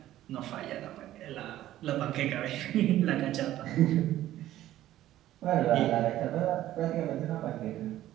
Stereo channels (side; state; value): left; quieter; 13.7 dB